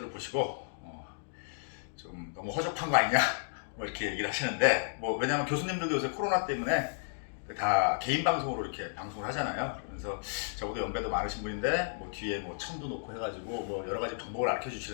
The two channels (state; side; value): silent; right; digital silence